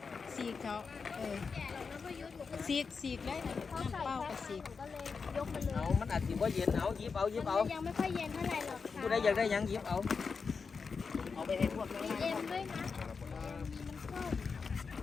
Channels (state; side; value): quieter; right; 5.2 dB